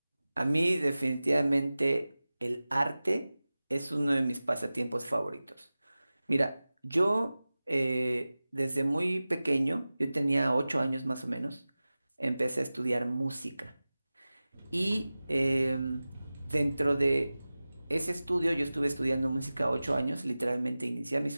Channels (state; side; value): inverted; both; correlation -0.97